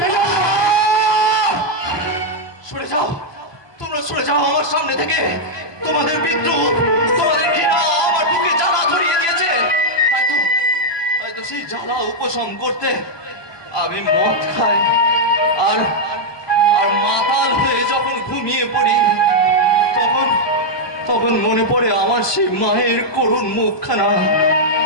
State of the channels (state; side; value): late; right; 1.2 ms